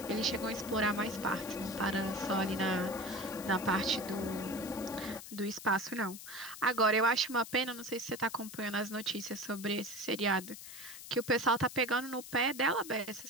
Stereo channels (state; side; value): noise; left; hiss, 13 dB below the sound